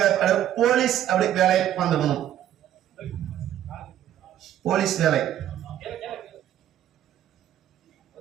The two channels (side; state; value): left; quieter; 11.5 dB